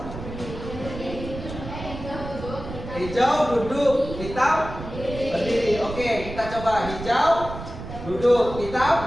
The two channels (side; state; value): right; noise; rumble, 10 dB below the sound